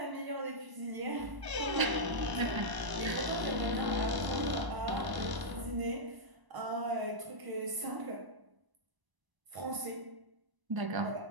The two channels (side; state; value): left; late; 1.0 ms